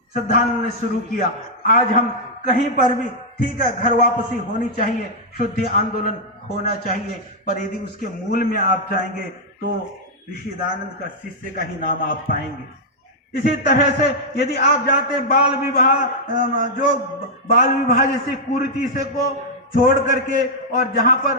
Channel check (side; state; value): both; normal; correlation -0.05